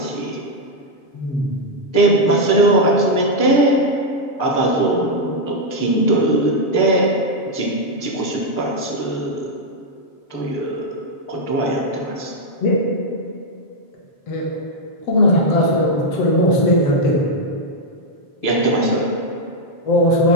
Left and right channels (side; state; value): right; late; 7.2 ms